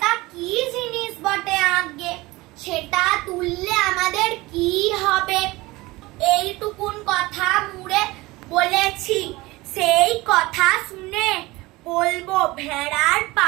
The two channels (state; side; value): quieter; left; 20.9 dB